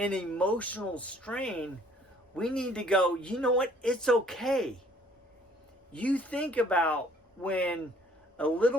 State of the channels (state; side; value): normal; both; correlation 0.59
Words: emotional strain, we need to go, you know what? It's okay. You think about when a